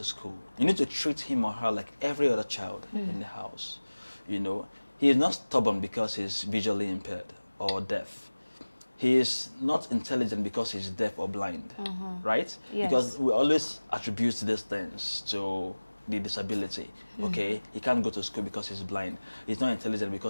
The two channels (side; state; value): both; inverted; correlation -1.00